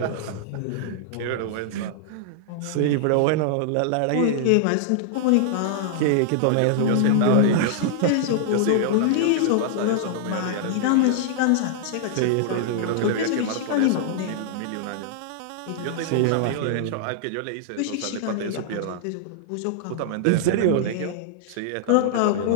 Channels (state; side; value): different; both; correlation -0.01